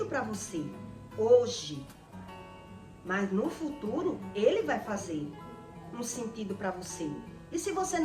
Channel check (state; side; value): identical; both; correlation 1.00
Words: para você hoje. Mas no futuro, ele vai fazer um sentido para você. E se você